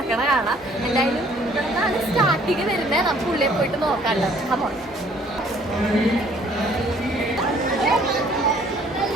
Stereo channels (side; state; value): both; normal; correlation 0.59